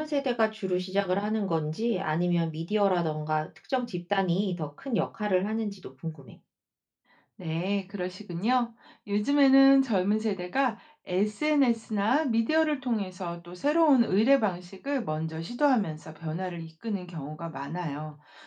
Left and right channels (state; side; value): identical; both; correlation 1.00